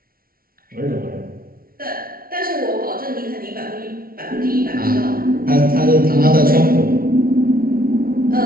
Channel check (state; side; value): late; left; 0.43 ms